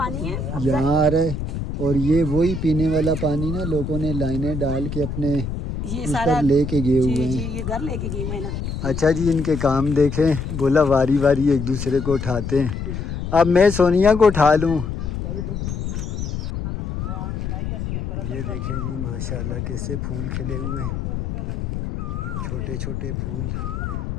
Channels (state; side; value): noise; left; rumble, 4 dB below the sound